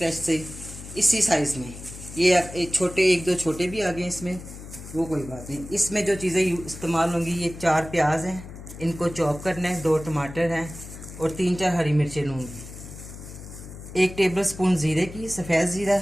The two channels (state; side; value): noise; left; hum, 13 dB below the sound